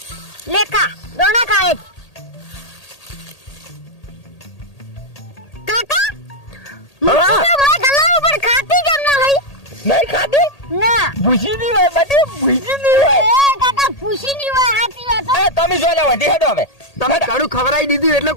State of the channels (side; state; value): right; late; 1.8 ms